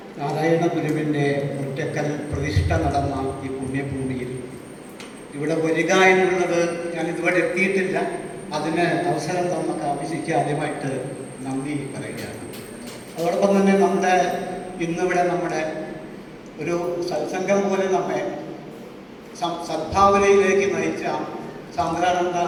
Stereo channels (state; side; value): identical; both; correlation 1.00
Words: നാരായണ ഗുരുവിൻ്റെ ഒറ്റക്കൽ പ്രതിഷ്ഠ നടന്ന ഈ പുണ്യഭൂമിയിൽ ഇവിടെ വരിക എന്നുള്ളത് ഞാൻ ഇതുവരെ എത്തിയിട്ടില്ല. അതിന് അവസരം തന്ന കാമിശിക്ക് ആദ്യമായിട്ട് നന്ദി പറയുകയാണ്. അതോടൊപ്പം തന്നെ ഇന്നിവിടെ നമ്മുടെ ഒരു സത്സംഗം പോലെ നമ്മെ സദ്ഭാവനയിലേക്ക് നയിച്ച സാന്ദ്രാനന്ദ